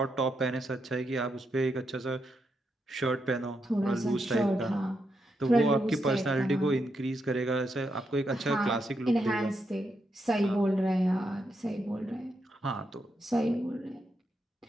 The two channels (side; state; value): both; normal; correlation 0.82